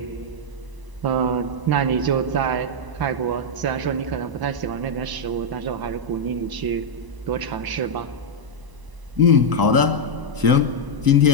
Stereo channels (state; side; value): late; left; 1.0 ms